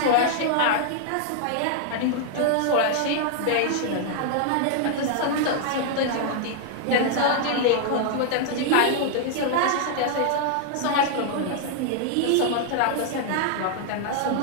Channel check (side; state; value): both; different; correlation -0.01